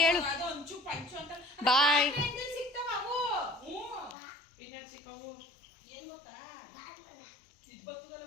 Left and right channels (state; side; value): drops out; right; at 4.2 s